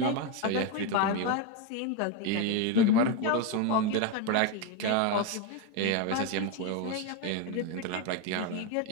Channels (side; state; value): both; different; correlation 0.03